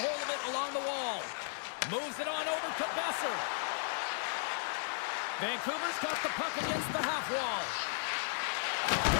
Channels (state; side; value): silent; right; digital silence